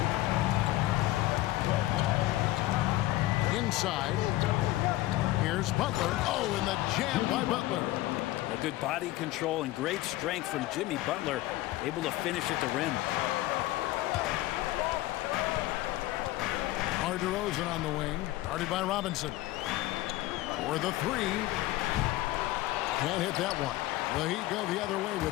Inside, here's Butler. Oh, and the jam by Butler. A good body control and great strength from Jimmy Butler, able to finish at the rim. DeRozan on the wing, guarded by Robinson. For the 3. Can't hit that one. The Heat go the other way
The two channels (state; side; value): quieter; right; 17.0 dB